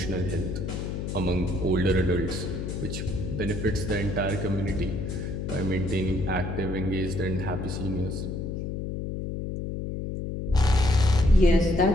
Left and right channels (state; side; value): noise; left; hum, 4 dB below the sound